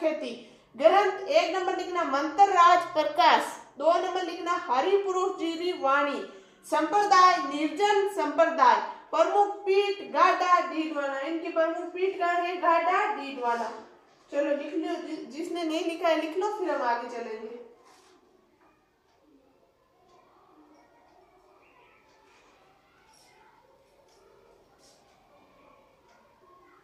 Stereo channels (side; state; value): both; identical; correlation 1.00